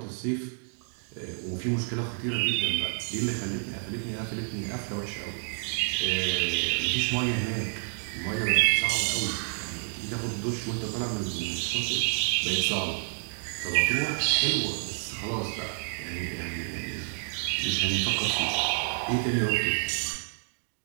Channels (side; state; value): left; silent; digital silence